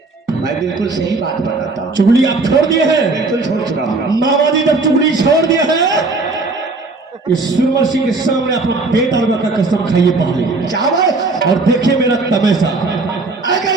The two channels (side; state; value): left; quieter; 3.6 dB